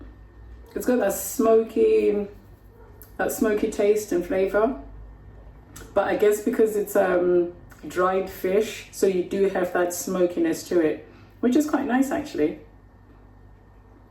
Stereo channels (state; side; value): identical; both; correlation 1.00